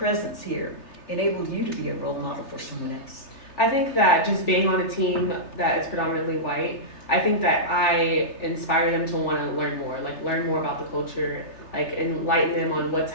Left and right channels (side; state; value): right; late; 3.3 ms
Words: here enabled you to be a role model for someone else? I think that just being on a team that is predominantly white, I think that I inspire them to want to learn more about the culture, like enlighten them on what's